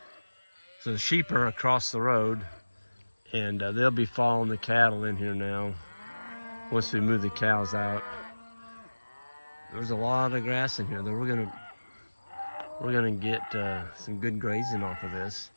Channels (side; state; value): both; inverted; correlation -1.00